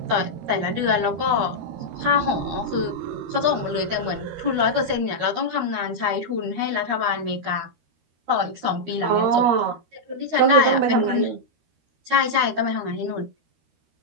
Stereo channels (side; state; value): left; late; 13 ms